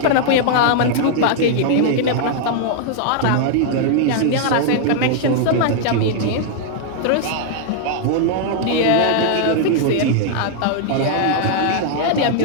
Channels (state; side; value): different; both; correlation -0.01